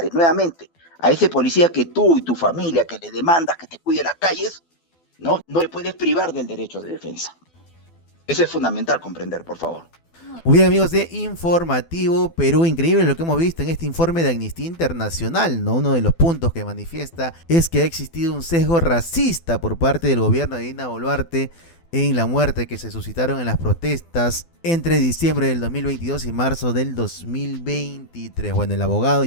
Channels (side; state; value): right; late; 12 ms